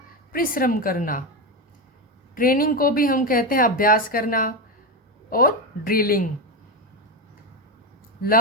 परिश्रम करना। ट्रेनिंग को भी हम कहते हैं अभ्यास करना, और ड्रिलिंग।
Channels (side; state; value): both; normal; correlation 0.13